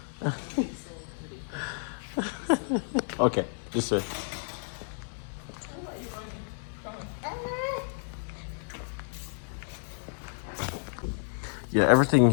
okay, this way. Yeah, everything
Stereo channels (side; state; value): right; silent; 57 dB below the other